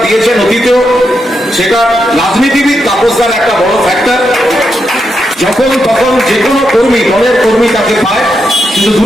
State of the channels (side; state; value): both; normal; correlation 0.83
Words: দিয়েছেন অতীতেও, সেটা রাজনীতিবিদ তাপসদার একটা বড় ফ্যাক্টর। যখন তখন যে কোনো কর্মী, দলের কর্মী তাকে পায়, কিন্তু